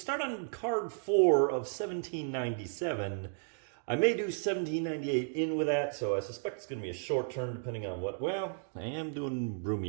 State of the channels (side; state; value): left; silent; digital silence